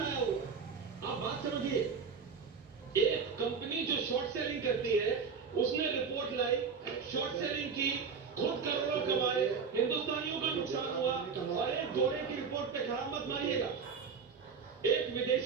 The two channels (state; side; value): quieter; left; 5.7 dB